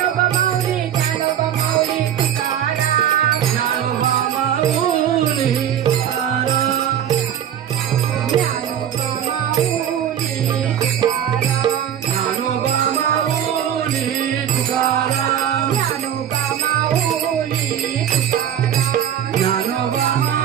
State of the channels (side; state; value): left; quieter; 9.9 dB